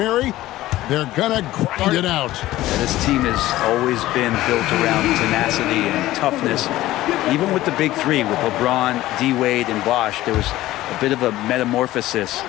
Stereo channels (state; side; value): quieter; right; 15.9 dB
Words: they're gonna grind it out. Yeah, this team has always been built around tenacity and toughness. Even with the big three, with LeBron, D-Wade, and Bosh, there was a bit of a metamorphosis